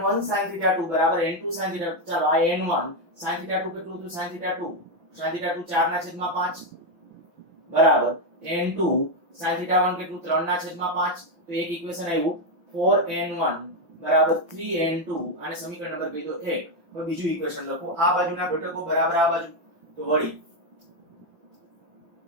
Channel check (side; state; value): left; late; 5.9 ms